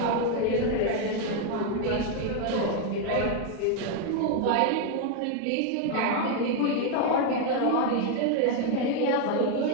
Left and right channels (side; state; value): both; different; correlation 0.01